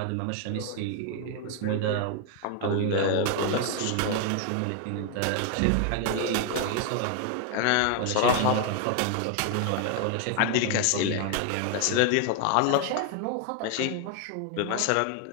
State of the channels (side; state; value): both; different; correlation 0.00